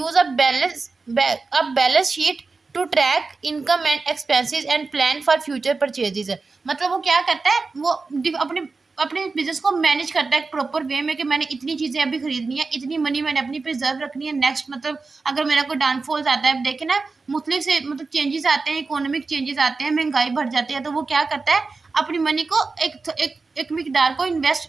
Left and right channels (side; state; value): left; quieter; 4.1 dB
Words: a balance sheet to track income and expenses and plan for future purchases। मतलब वो क्या करता है, वो अपने अपने बिजनेस को मैनेज करता है प्रॉपर वे में कि मैंने इतनी चीजें अभी खरीदनी है, इतनी मनी मैंने अपनी प्रिजर्व रखनी है, नेक्स्ट मतलब अगर मेरा कोई डाउनफॉल्स आता है, देखे ना मुख्तलिफ से मतलब चेंजेस आते हैं, इकोनॉमिक चेंजेस आते हैं, महंगाई बढ़ जाती है, तो वो क्या करता है, अपनी मनी को एक मिकदार को